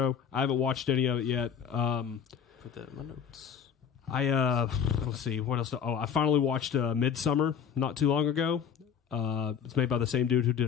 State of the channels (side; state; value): right; quieter; 7.7 dB